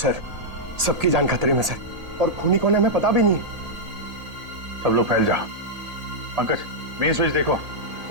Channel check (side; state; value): left; late; 1.8 ms